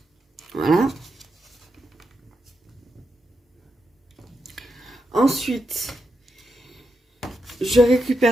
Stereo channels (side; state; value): both; normal; correlation 0.85